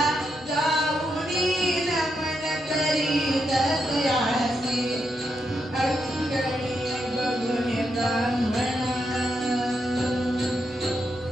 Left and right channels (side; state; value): right; noise; hum, 27 dB below the sound